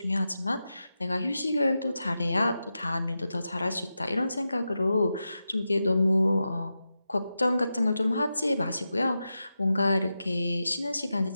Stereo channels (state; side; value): inverted; both; correlation -0.90